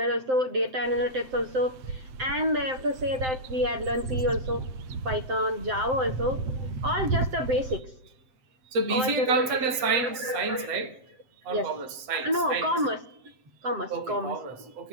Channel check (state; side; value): late; left; 7.8 ms